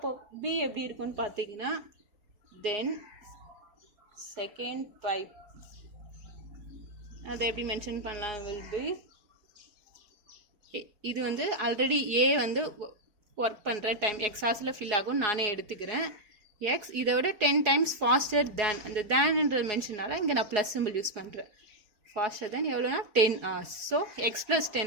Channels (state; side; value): late; left; 4.8 ms